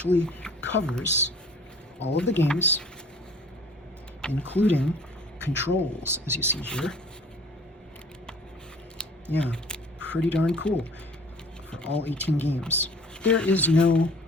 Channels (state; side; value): normal; both; correlation 0.50